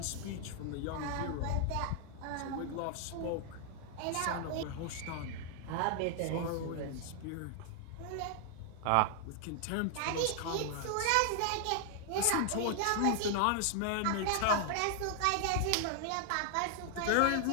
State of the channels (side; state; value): both; different; correlation 0.00